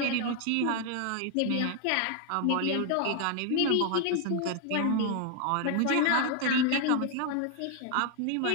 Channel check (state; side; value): different; both; correlation 0.00